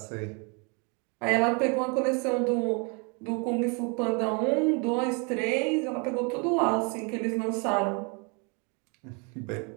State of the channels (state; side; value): quieter; left; 33.2 dB